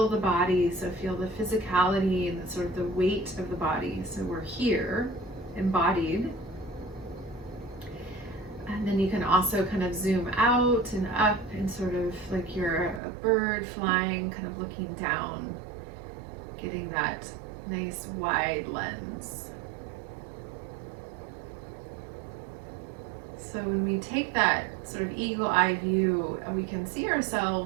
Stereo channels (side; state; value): left; drops out; at 13.0 s